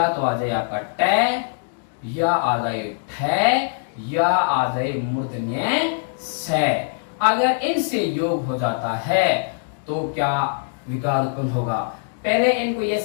तो आ जाए आपका ट, या आ जाए ठ, या आ जाए मूर्धन्य से। अगर इनसे योग हो जाता है तो क्या विकार उत्पन्न होगा। पहले इनको ये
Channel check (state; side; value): silent; right; digital silence